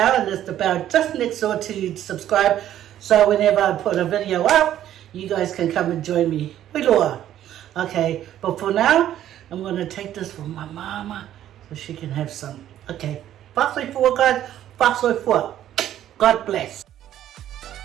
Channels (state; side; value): quieter; left; 11.7 dB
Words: and there's the bell just next door to subscribe. So whenever I put a video up, you guys can come and join me. Okay, but for now, I'm going to take this for my mama so she can have some. Okay, fast way forward, guys. Fast way forward. God bless.